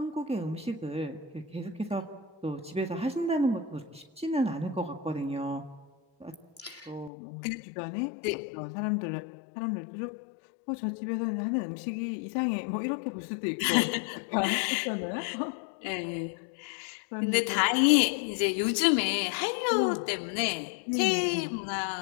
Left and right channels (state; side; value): drops out; right; at 7.1 s